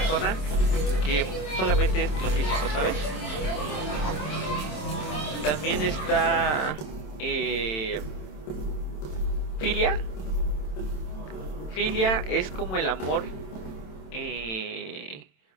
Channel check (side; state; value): right; late; 27 ms